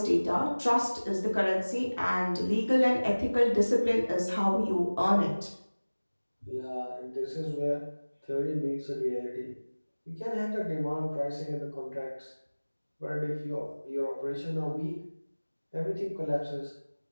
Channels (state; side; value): inverted; both; correlation -1.00